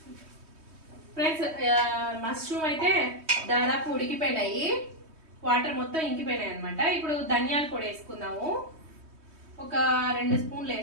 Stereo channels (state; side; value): late; left; 3.2 ms